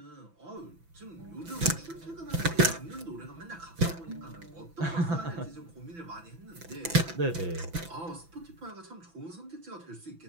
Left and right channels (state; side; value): late; left; 6.0 ms